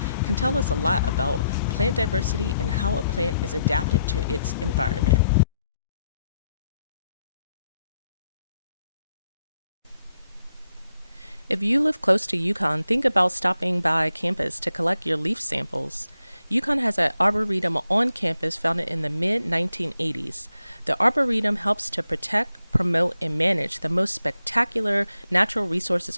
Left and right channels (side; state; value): both; inverted; correlation -0.80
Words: can tell us a lot about plant diversity and how a plant is adapted to its environment. If you live close to UConn, think about stopping by campus to collect your leaf samples. UConn has an arboretum on campus founded in the mid-1980s. The arboretum helps to protect, promote, and manage the most spectacular natural resources